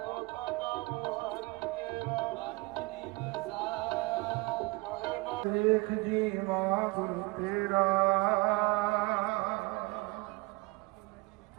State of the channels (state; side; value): quieter; left; 25.5 dB